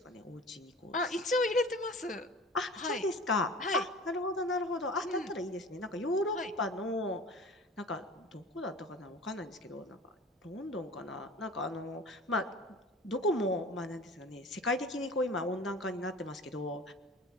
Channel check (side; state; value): both; normal; correlation 0.41